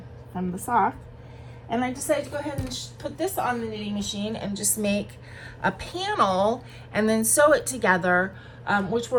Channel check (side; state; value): both; identical; correlation 1.00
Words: from the sock. And I decided to go ahead and put this on the knitting machine and just make a panel and then sew it together, which